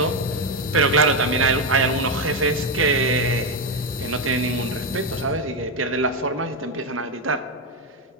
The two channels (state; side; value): normal; both; correlation 0.08